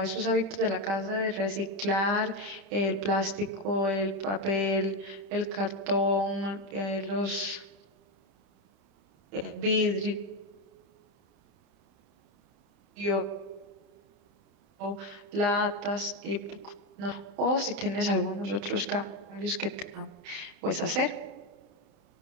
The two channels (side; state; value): left; late; 31 ms